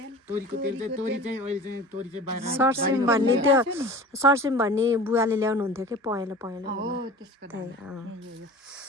तोरीको तेल चाहिँ तोरी चाहिँ अहिले चाहिँ तोरी चाहिँ बाहिर सर्सिम भन्ने त्यो सर्सिम भन्ने बुवाले ल्याउनु हुन्थ्यो कि पहेँलो पहेँलो हो त्यसको त्यही अँ।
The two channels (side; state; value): both; normal; correlation 0.39